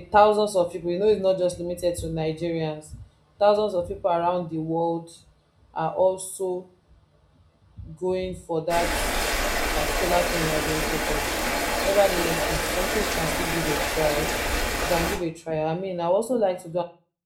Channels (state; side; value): identical; both; correlation 1.00